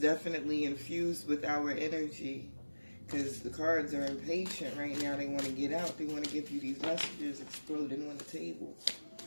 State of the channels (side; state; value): both; inverted; correlation -1.00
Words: infused with our energy, because the cards are impatient right now. They want to get out. They want to give you these messages exploding on the table.